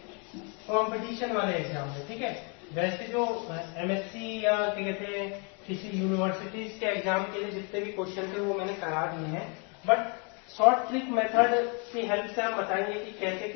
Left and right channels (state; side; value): quieter; right; 35.2 dB